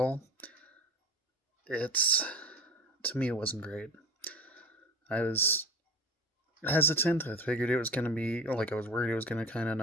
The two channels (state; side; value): normal; both; correlation 0.33